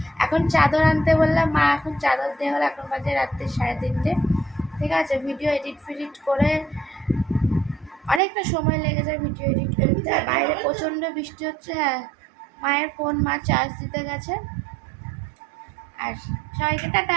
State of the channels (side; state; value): left; drops out; at 8.2 s